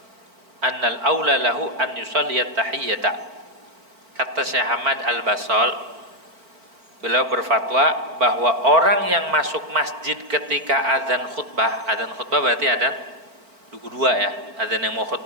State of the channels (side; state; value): left; late; 4.4 ms